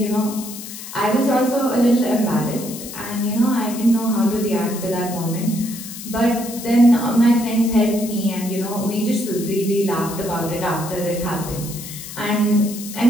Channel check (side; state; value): left; noise; hiss, 11 dB below the sound